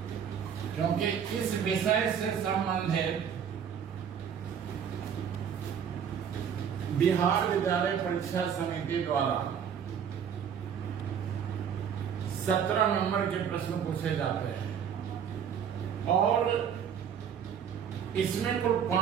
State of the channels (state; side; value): quieter; left; 8.0 dB